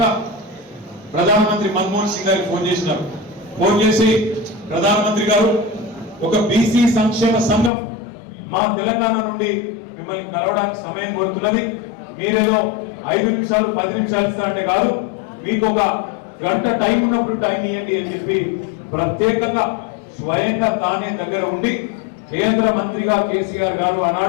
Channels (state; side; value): drops out; right; at 7.7 s